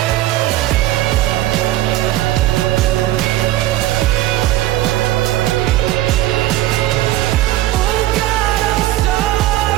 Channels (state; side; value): quieter; left; 15.2 dB